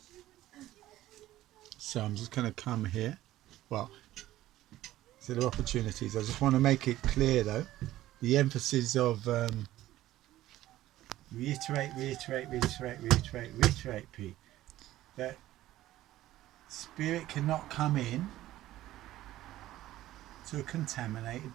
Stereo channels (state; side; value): quieter; left; 14.8 dB